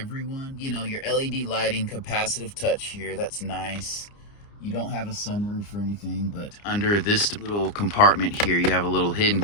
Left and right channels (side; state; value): right; late; 29 ms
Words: You know, your LED lighting, capacitive touch here. That's nice. You don't have a sunroof or anything, but under this little compartment here, you have a little hidden